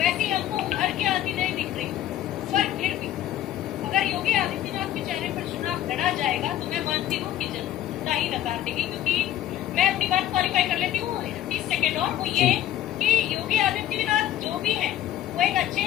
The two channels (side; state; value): right; quieter; 12.5 dB